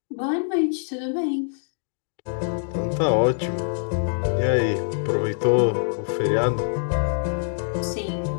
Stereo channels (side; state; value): right; silent; digital silence